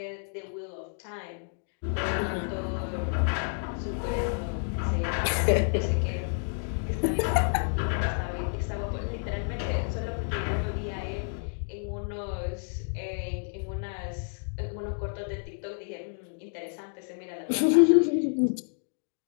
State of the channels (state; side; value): silent; right; 58 dB below the other